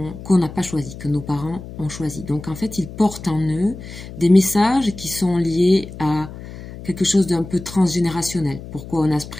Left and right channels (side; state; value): left; noise; hum, 13 dB below the sound